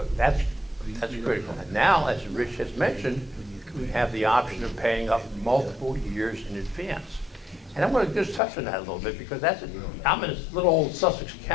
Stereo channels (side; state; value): right; drops out; at 8.4 s